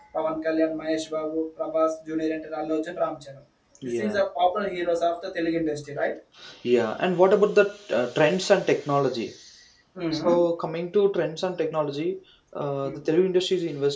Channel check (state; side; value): identical; both; correlation 1.00